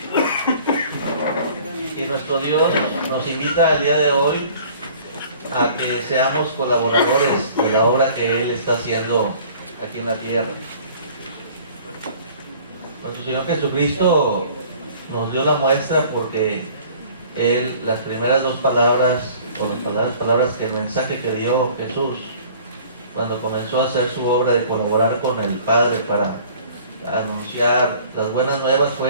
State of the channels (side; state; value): both; inverted; correlation -0.51